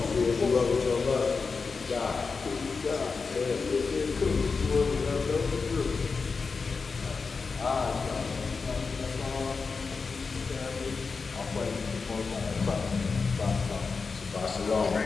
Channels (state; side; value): quieter; right; 4.7 dB